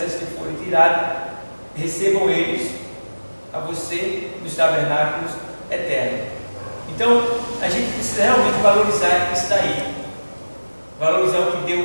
que forem tiradas, recebam eles a você nos tabernáculos eternos. Então, a gente precisa realmente valorizar isso daí. Valorizar o que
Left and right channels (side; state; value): both; inverted; correlation -1.00